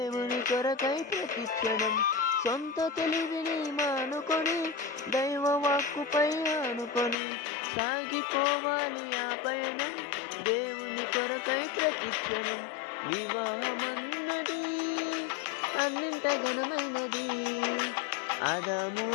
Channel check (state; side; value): drops out; right; at 7.2 s